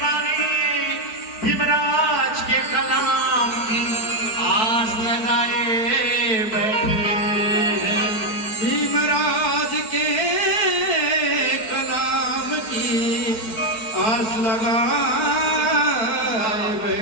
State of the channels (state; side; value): late; right; 4.6 ms